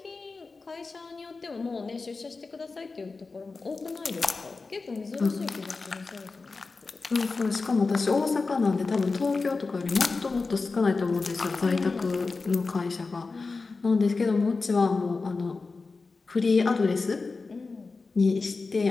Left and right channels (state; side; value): quieter; right; 4.0 dB